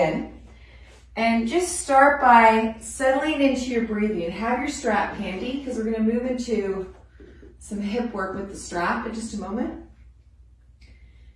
And just start by settling into your breathing. Have your strap handy because we're going to move into some hip work with the strap in just a moment.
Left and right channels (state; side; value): identical; both; correlation 1.00